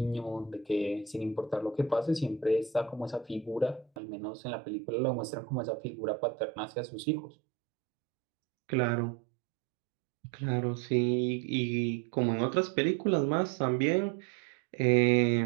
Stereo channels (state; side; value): drops out; left; at 3.9 s